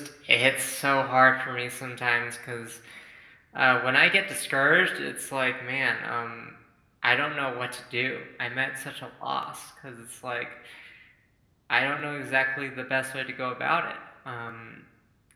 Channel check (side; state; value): both; identical; correlation 1.00